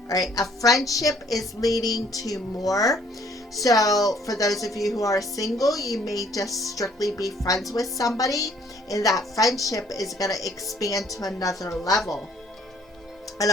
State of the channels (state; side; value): normal; both; correlation 0.61